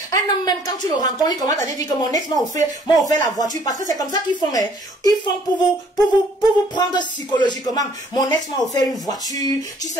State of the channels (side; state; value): both; normal; correlation 0.59